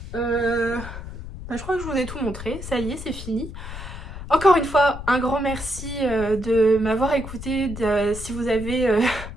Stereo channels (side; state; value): left; noise; rumble, 10 dB below the sound